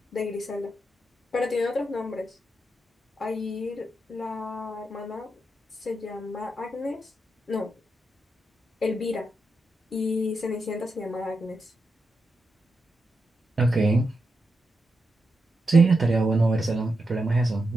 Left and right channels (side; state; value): both; normal; correlation 0.86